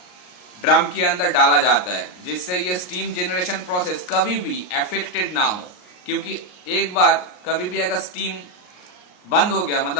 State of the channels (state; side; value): late; right; 39 ms